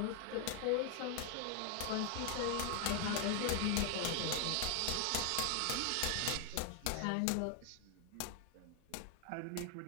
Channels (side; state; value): both; different; correlation 0.00